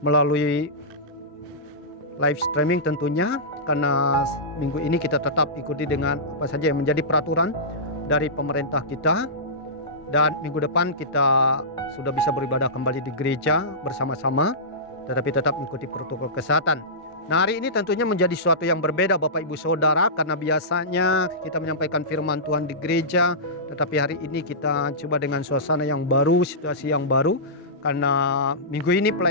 melalui live streaming tentunya, karena minggu ini kita tetap ikuti dengan apa saja yang menjadi peraturan dari pemerintah kita. Dan minggu depan kita sudah bisa beribadah kembali di gereja bersama-sama, tetapi tetap mengikuti protokol kesehatan. Nah, hari ini tentunya menjadi sesuatu yang berbeda Bapak Ibu Saudara, karena biasanya kita menyampaikan firman Tuhan di gereja, tetapi hari ini kita coba dengan suasana yang baru, situasi yang baru, karena minggu ini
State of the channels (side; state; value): both; normal; correlation -0.18